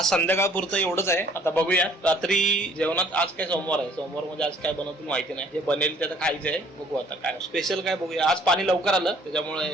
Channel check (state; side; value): normal; both; correlation 0.58